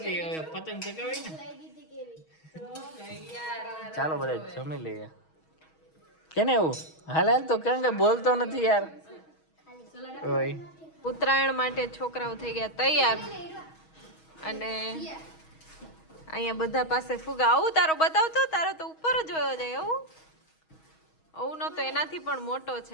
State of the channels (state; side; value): late; right; 6.3 ms